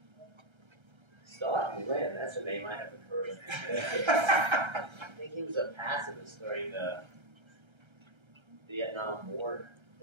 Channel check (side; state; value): left; late; 1.3 ms